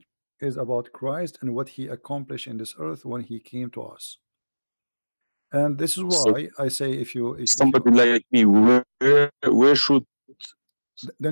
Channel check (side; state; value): both; inverted; correlation -1.00